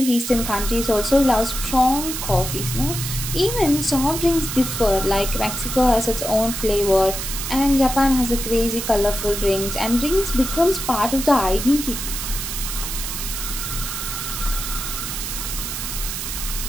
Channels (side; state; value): right; noise; hiss, 5 dB below the sound